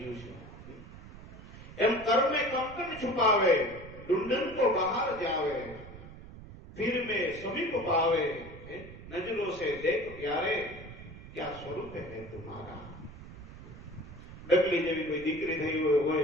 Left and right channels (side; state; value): right; noise; rumble, 15 dB below the sound